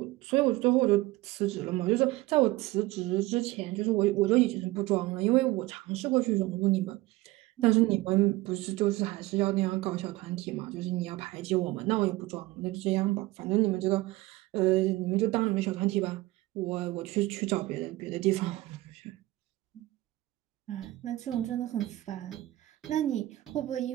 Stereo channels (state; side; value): quieter; left; 18.5 dB